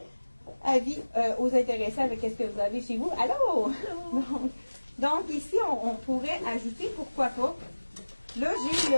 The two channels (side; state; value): both; inverted; correlation -1.00